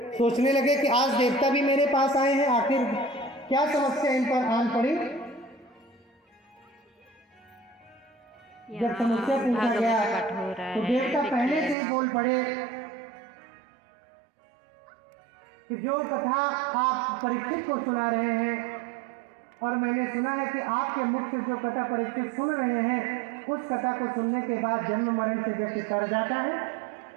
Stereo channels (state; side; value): drops out; left; at 11.8 s